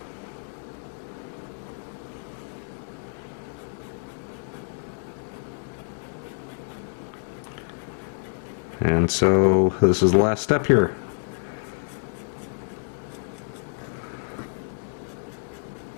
And so this is the last step here.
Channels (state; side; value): silent; right; 60 dB below the other